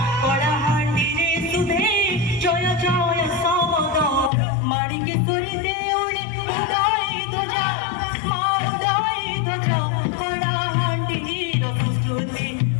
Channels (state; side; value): drops out; right; at 4.3 s